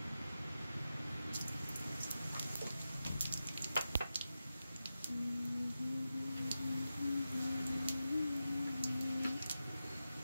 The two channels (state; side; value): inverted; both; correlation -0.92